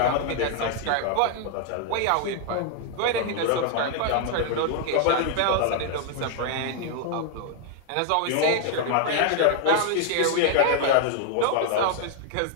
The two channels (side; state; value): both; different; correlation 0.00